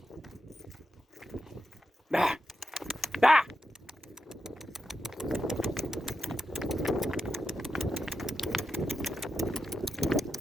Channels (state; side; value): normal; both; correlation 0.88